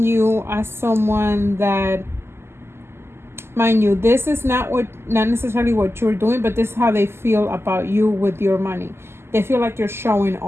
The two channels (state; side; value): late; left; 0.12 ms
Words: you as someone that, mind you, this is not necessarily what you're doing, but this is how they feel about you with your money. They feel like you're showing